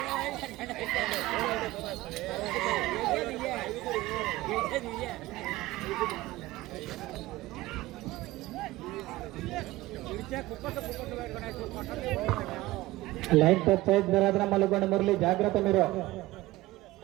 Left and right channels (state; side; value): quieter; left; 18.2 dB